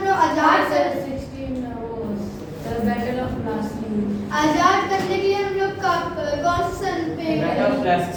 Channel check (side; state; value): both; identical; correlation 1.00